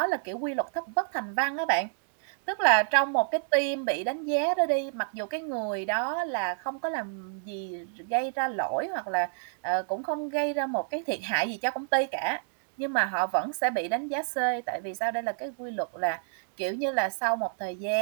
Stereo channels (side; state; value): left; silent; digital silence